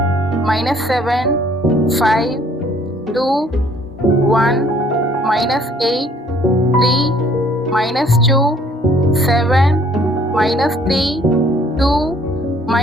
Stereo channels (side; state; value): both; normal; correlation 0.59